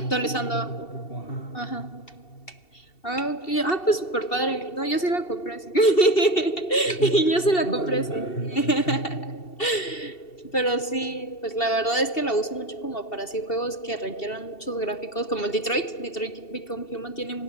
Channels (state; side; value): late; right; 2.7 ms